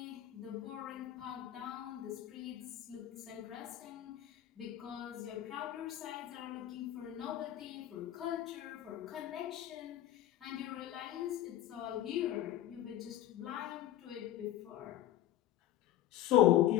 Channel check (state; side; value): quieter; right; 13.1 dB